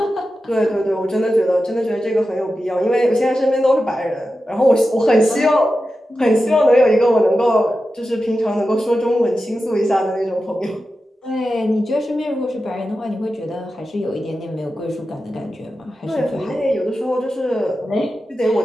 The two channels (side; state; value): both; normal; correlation 0.92